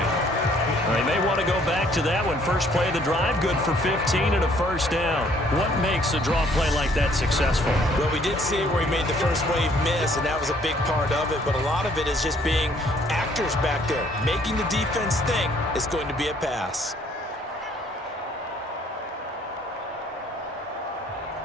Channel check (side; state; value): both; normal; correlation 0.62